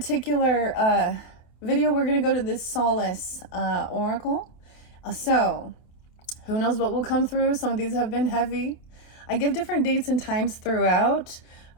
video, we're going to go to this Solace Oracle. So who knows what will come through? Some of these have been heavy. I give different dates and times throughout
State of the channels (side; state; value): right; late; 27 ms